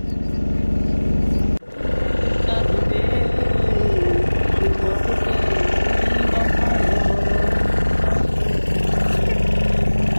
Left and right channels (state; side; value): inverted; both; correlation -1.00